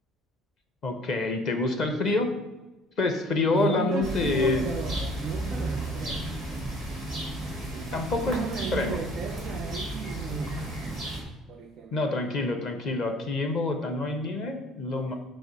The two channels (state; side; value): normal; both; correlation 0.53